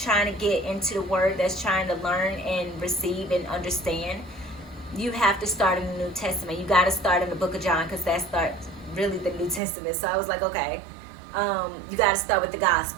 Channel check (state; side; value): drops out; left; at 9.6 s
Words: to get into the Word, that's trying to learn and receive and understand, you have to start in the New Testament. You got to start in the book of John, because that starts really the New Testament. So I was like, okay, you got to start with the